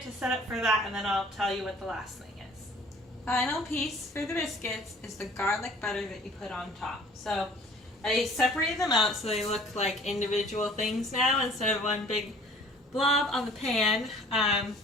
to set up for that, and then I'll tell you what the last thing is. Final piece for the biscuits is the garlic butter that you put on top. So I separated them out so they look like individual things now instead of one big blob on the pan.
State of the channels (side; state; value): both; normal; correlation 0.51